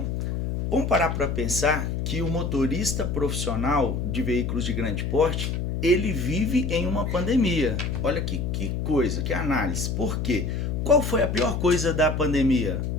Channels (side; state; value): left; noise; hum, 1 dB below the sound